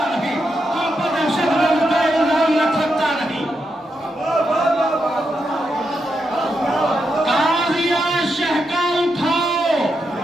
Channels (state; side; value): normal; both; correlation 0.84